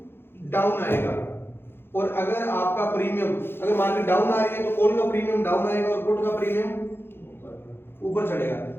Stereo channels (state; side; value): late; right; 0.11 ms